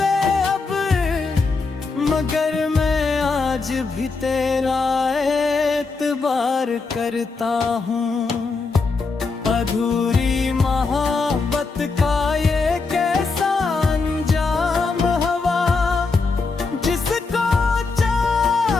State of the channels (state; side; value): quieter; right; 4.2 dB